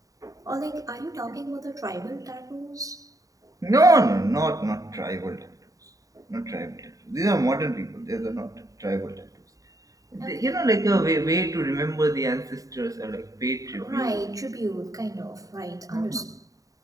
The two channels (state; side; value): late; left; 0.16 ms